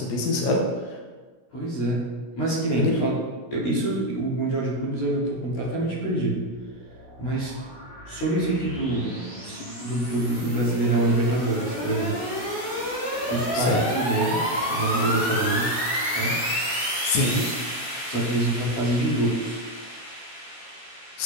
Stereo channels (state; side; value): late; right; 16 ms